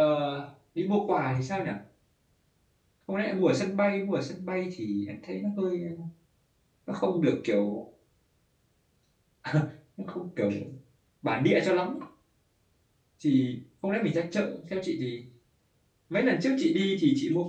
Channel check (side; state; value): both; identical; correlation 1.00